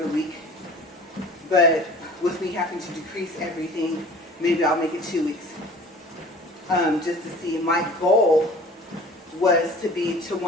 week. But with me having to decrease everything, maybe I'll make it 2 weeks. Just to see. My goal was to be to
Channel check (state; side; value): normal; both; correlation 0.45